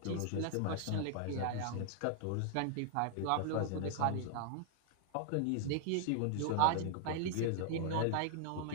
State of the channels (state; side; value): different; both; correlation 0.00